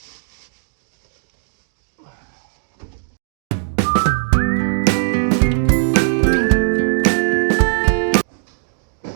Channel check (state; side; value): silent; left; digital silence